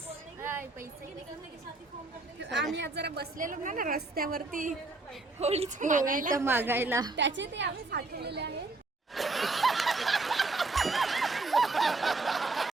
आम्ही आज जरा बसलेलो ना रस्त्यावरती होळीचं मागायला. त्याचे ते आम्ही साठवलेले आहे.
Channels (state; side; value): quieter; left; 3.3 dB